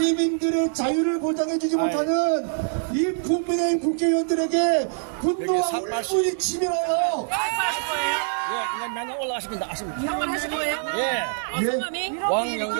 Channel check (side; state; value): left; silent; 62 dB below the other